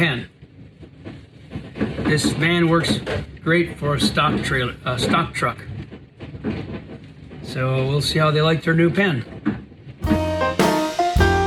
This van works great for a stock trailer, stock truck. So we'll see how they like their new pen.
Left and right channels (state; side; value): identical; both; correlation 1.00